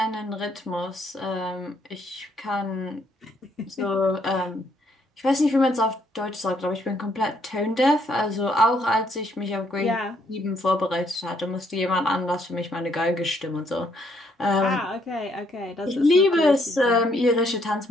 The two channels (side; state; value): both; normal; correlation 0.70